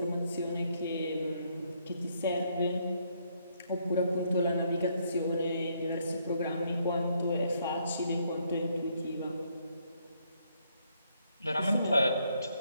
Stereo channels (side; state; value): both; inverted; correlation -0.72